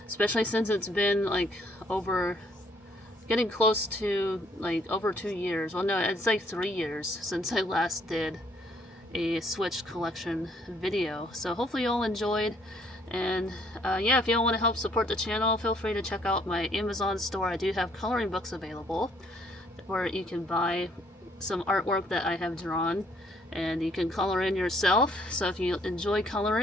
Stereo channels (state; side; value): normal; both; correlation 0.65